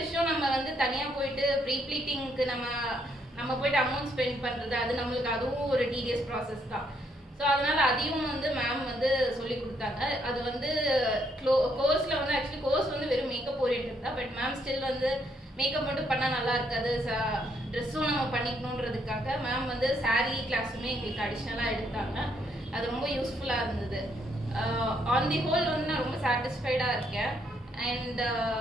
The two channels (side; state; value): both; normal; correlation 0.73